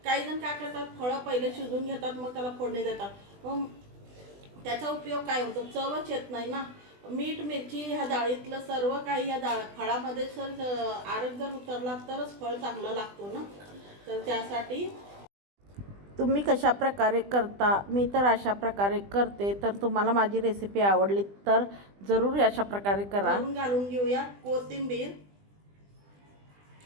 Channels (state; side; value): late; left; 20 ms